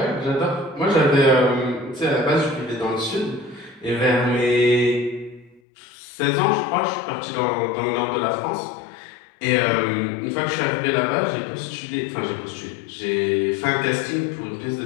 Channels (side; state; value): right; drops out; at 5.6 s